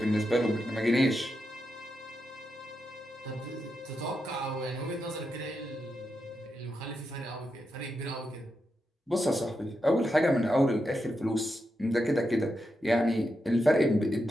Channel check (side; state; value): both; normal; correlation 0.86